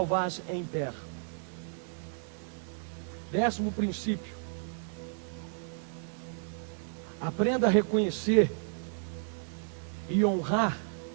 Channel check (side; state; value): left; silent; digital silence